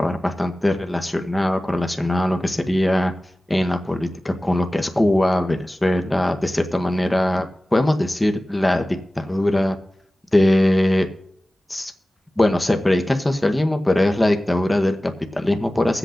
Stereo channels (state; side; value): normal; both; correlation 0.96